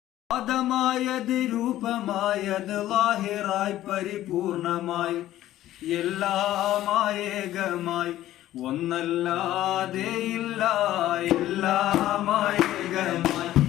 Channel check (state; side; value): quieter; right; 13.9 dB